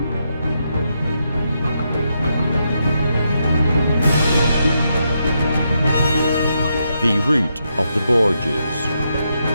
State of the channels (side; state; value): both; inverted; correlation -0.81